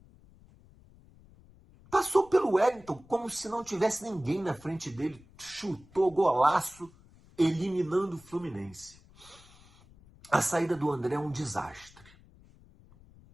passou pelo Wellington como se não tivesse ninguém na frente dele, chutou golaço, eliminando o Fluminense. A saída do André é um desastre.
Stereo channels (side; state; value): left; noise; rumble, 25 dB below the sound